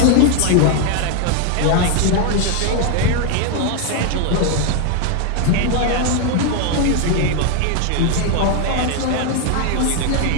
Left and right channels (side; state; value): both; different; correlation 0.01